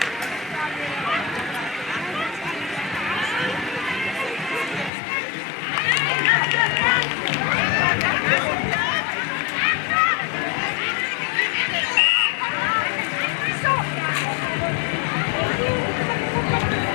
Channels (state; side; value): drops out; right; at 4.9 s